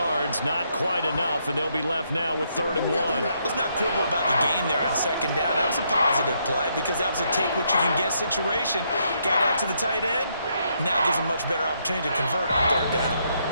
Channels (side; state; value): both; inverted; correlation -0.75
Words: not quite enough, and they'll be left now with 3rd and 1. Let's not quibble about the gain there on 2nd down. That was a positive play because that was a take-what-you-can-get situation. Got out to the tight end. Now gives them much better opportunity to convert on 3rd down.